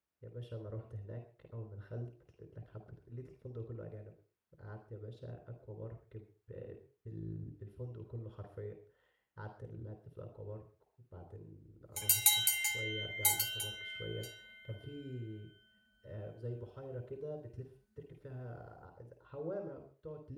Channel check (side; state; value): both; identical; correlation 1.00